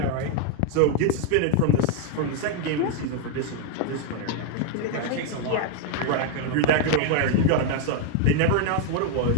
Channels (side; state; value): both; different; correlation 0.00